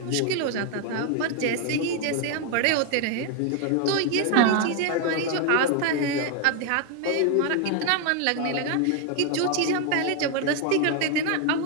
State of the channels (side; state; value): both; different; correlation 0.01